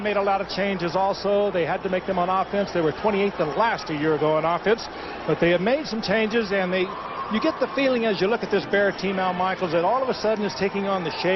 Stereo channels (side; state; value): both; identical; correlation 1.00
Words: a lot of changes also. They had to make them on offense. They were 28th and last a year ago on offense, but they have made some changes, and you get the feeling as you look at this Bear team, Al Michaels, that all of a sudden is taking on the